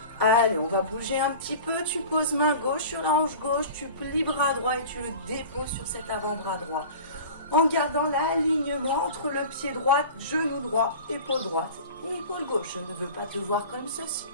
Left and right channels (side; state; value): both; inverted; correlation -0.38